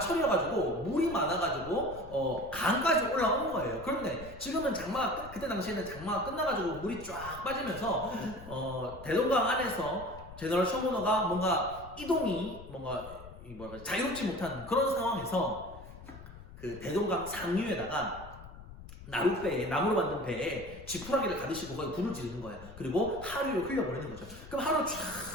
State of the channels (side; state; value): left; noise; rumble, 16 dB below the sound